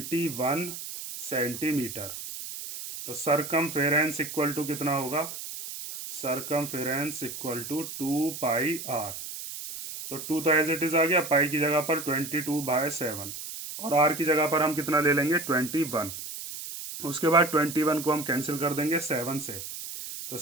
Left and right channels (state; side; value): noise; right; hiss, 9 dB below the sound